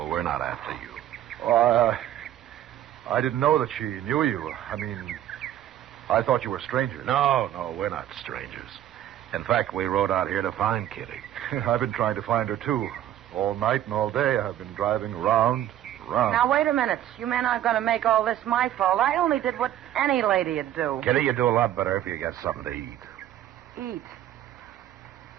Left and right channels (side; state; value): left; quieter; 12.0 dB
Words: We're not after you. I didn't know that she knew you. I mean, I thought you were strangers. No, we're not strangers. In fact, we rode out here to find Kitty. I've been trying to find her, too. All night and all day, I've been driving around. Now, wait a minute. You men aren't going to make all this my fault. I only did what any lady'd do. Kitty, you do a lot better if you get something to eat. Eat?